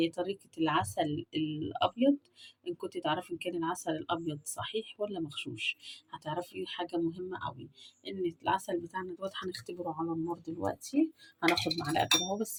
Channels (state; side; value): identical; both; correlation 1.00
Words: طريقة العسل الابيض. ان كنت تعرفي ان كان العسل الابيض صحيح ولا مغشوش، هتعرفي حاجة مهمة قوي، ان العسل بتاعنا دوت هنختبره على النار دلوقتي. هناخد معلقة كده اهو،